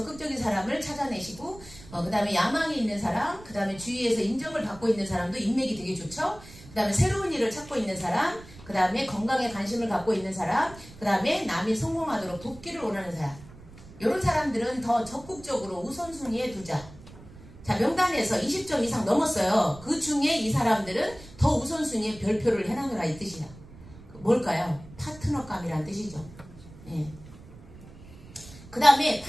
사람을 찾아내시고 그 다음에 야망이 있는 사람, 그 다음에 주위에서 인정을 받고 있는 사람도 인맥이 되게 좋죠. 그 다음에 새로운 일을 찾고 있는 사람, 그 다음에 건강에 관심을 갖고 있는 사람, 그 다음에 남이 성공하도록 돕기를 원하는 사람. 이런 사람들은 더 적극적으로 우선순위에 두자. 자, 명단에서 20점 이상 넘었어요. 그 중에 이 사람들은 더 우선순위에 별표를 해놔라 이 뜻이야. 뭘까요? 파트너감이란 뜻이죠. 예. 그 다음에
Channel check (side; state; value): right; noise; rumble, 19 dB below the sound